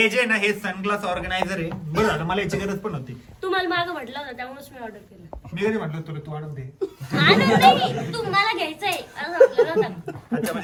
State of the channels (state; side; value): identical; both; correlation 1.00